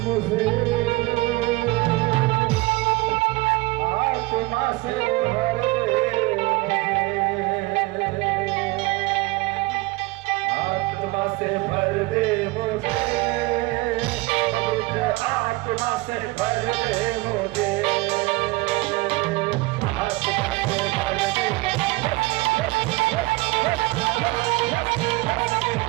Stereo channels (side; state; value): left; quieter; 21.6 dB